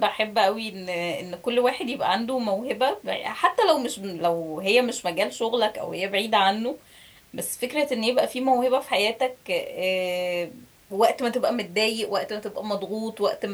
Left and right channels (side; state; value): both; identical; correlation 1.00